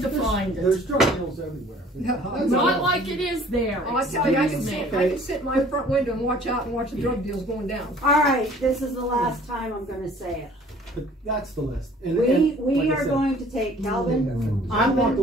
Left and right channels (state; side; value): normal; both; correlation 0.52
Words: to find it. There's drug deals everywhere. Not like it is there. I tell you, I can Excuse sit in my front window and watch out and watch the drug deals going down. All right, this is the last time I'm going to say it. But that's the list. And, We like I are said, going to take Calvin. I'm not